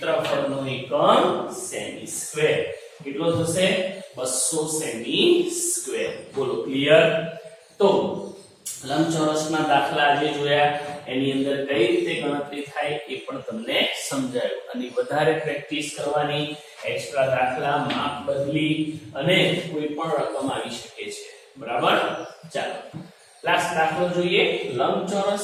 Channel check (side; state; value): both; identical; correlation 1.00